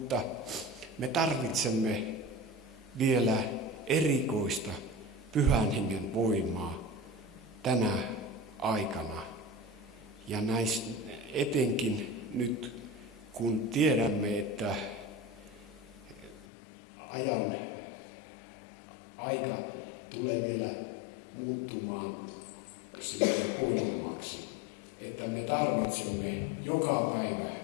me tarvitsemme vielä erikoista Pyhän Hengen voimaa tänä aikana. Ja etenkin nyt, kun tiedämme, että aika tulee vielä muuttumaan silleen huonommaksi, että me tarvitsemme joka päivä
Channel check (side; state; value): right; drops out; at 16.4 s